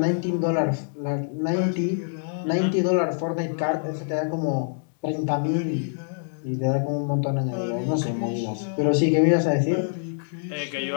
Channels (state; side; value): silent; right; digital silence